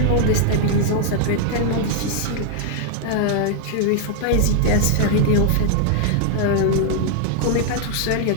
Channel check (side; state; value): both; different; correlation 0.00